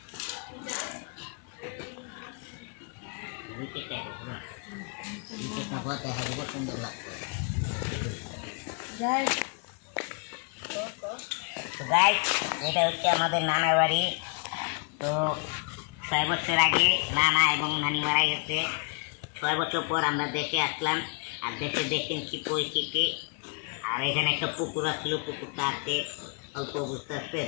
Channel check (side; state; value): right; quieter; 36.5 dB